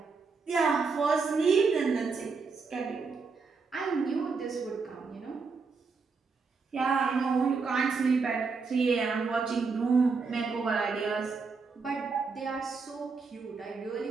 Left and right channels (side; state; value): left; quieter; 4.7 dB